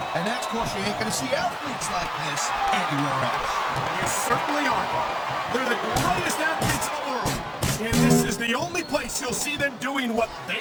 And that's because you ain't gonna see athletes like this anywhere else. You certainly aren't. They're the greatest athletes in the world. And this is the only place you'll see them doing what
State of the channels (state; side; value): identical; both; correlation 1.00